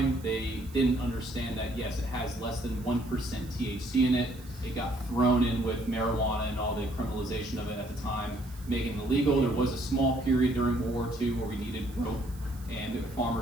they didn't understand that yes, it has less than 1% THC in it. It got thrown in with marijuana and all the criminalization of it at the time, making it illegal. There was a small period during World War II where we needed rope, and the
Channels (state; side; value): noise; right; hiss, 22 dB below the sound